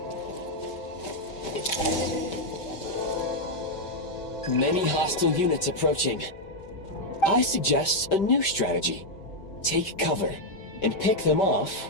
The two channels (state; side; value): late; right; 5.1 ms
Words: Many hostile units approaching. I suggest a new strategy. Take cover and pick them